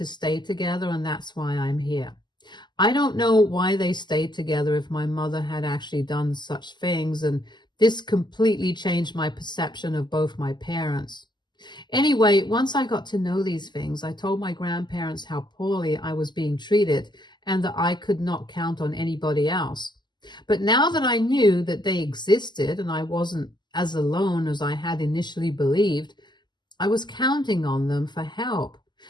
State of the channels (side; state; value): right; late; 0.21 ms